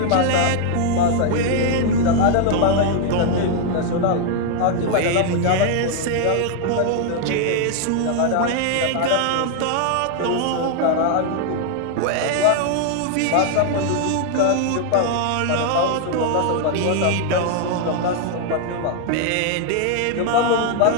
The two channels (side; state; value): both; different; correlation 0.00